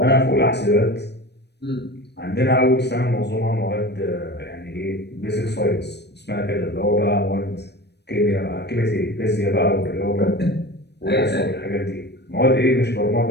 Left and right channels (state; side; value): late; right; 0.49 ms